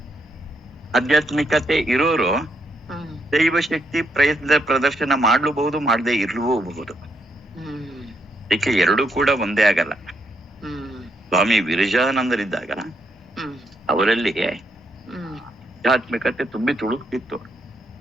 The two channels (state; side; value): normal; both; correlation 0.76